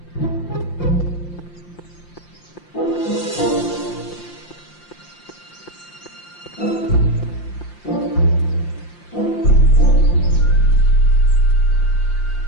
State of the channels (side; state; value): right; late; 5.8 ms